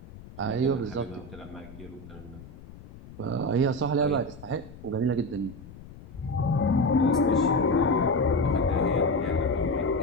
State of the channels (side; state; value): left; noise; rumble, 17 dB below the sound